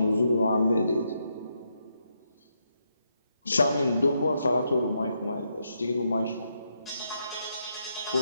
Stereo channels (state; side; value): inverted; both; correlation -0.80